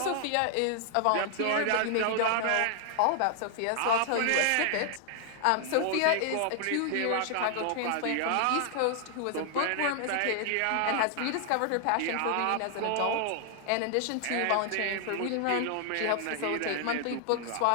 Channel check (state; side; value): different; both; correlation 0.00